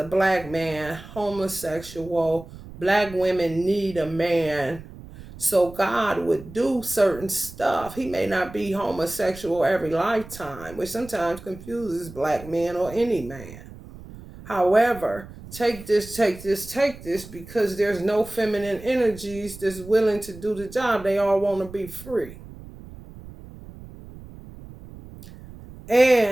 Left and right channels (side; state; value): right; noise; rumble, 16 dB below the sound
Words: black man, homosexual, black women need a man. So God would do certain stuff. He may not be homosexual every lifetime, which sometimes confuses black men or any man. However, take this, because there's no feminine energies that's willing to do the job. They all want to be free.